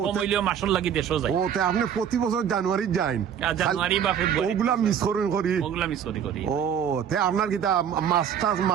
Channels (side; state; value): left; quieter; 8.5 dB